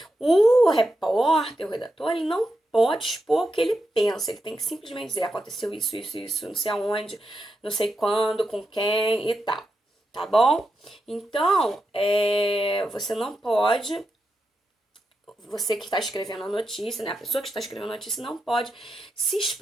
O repórter, o redator, ele não pode expor o que ele pensa. Ele tem que simplesmente dizer, aconteceu isso, não sei aonde, não sei quando, com quem e tal. Tá bom? Então, você não pode, você que está escrevendo a notícia, né? A pessoa que está escrevendo a notícia não pode se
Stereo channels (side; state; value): both; normal; correlation 0.87